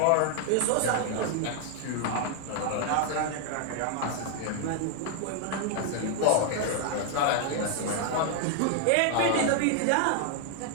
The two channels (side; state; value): both; different; correlation 0.00